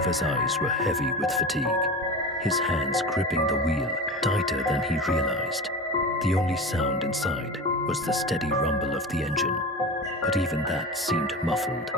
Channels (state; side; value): normal; both; correlation 0.29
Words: eyes were heavy with fatigue, his hands gripping the wheel tighter than he realized. The only sound inside was the steady rumble of the engine, but even that seemed muffled,